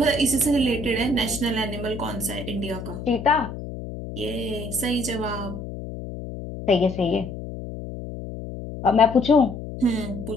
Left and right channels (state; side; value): noise; left; hum, 9 dB below the sound